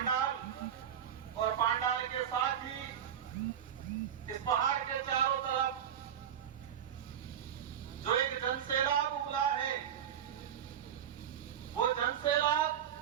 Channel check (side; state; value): left; quieter; 9.3 dB